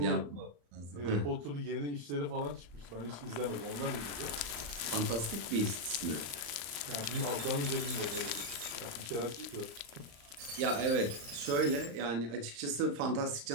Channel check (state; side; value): late; left; 35 ms